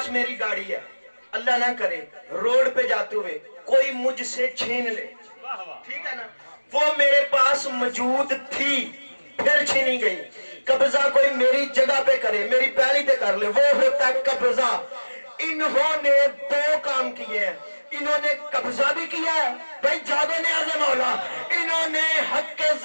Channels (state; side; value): inverted; both; correlation -1.00